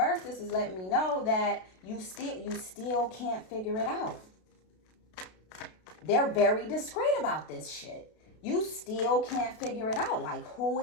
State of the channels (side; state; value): right; late; 32 ms